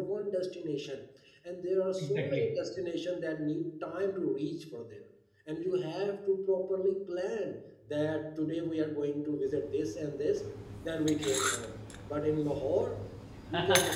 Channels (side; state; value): both; identical; correlation 1.00